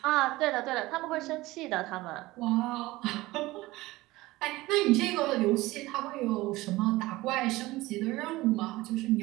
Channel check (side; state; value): left; quieter; 19.3 dB